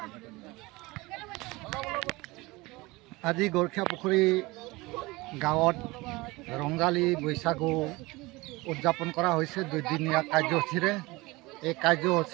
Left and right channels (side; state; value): left; quieter; 22.3 dB